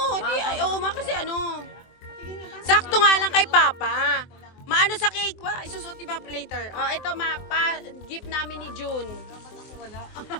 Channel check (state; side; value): late; right; 23 ms